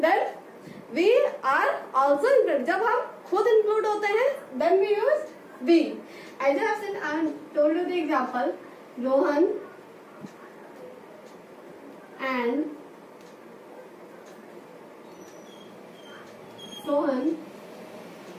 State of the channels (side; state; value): both; identical; correlation 1.00